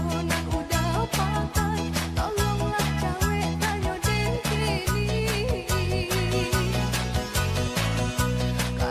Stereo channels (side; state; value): both; identical; correlation 1.00